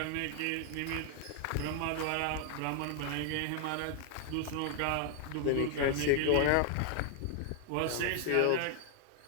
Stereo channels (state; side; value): different; both; correlation 0.00